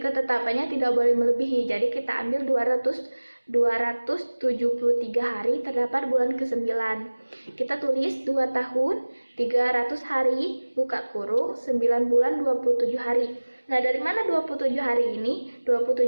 tidak boleh melebihi. Jadi kita ambil 273 hari terdapat bulan ke-9. Kita tulis 2 tahun 300 hari buka kurung 9 bulan 27 hari. Nah, dari mana 27 hari ini?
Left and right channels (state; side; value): inverted; both; correlation -1.00